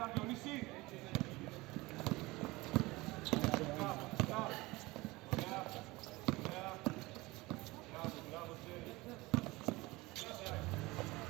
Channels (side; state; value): left; quieter; 21.5 dB